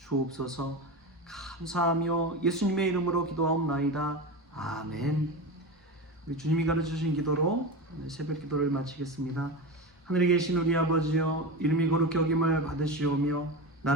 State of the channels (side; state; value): both; normal; correlation 0.23